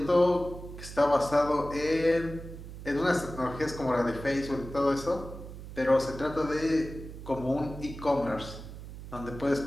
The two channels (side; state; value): right; noise; hum, 12 dB below the sound